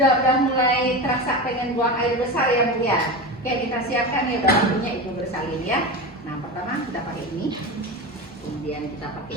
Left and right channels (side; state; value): left; noise; hum, 28 dB below the sound